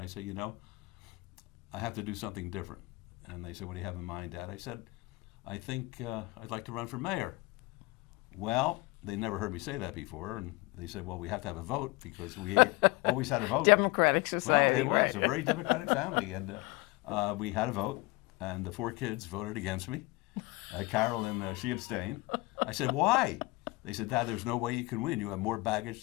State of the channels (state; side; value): quieter; right; 22.6 dB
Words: said, I have to do something different. And they said, what do you have in mind, Dad? I said, I think I'd like to run for mayor. Well, they never heard me say that before, and they said, well, we have to have a vote, because we always had a vote. Democratic society. Well, it was right. a very democratic family, and we had a vote, and the 4 kids voted against me. Carolyn, she abstained. I said, why? They said, Dad, there's no way you can win. You have more baggage